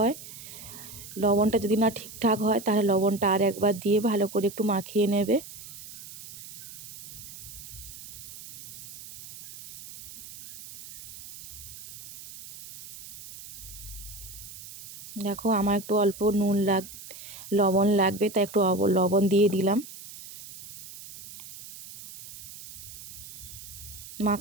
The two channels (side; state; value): right; noise; hiss, 14 dB below the sound